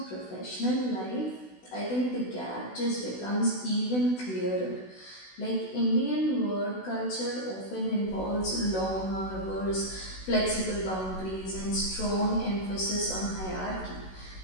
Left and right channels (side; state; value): right; late; 16 ms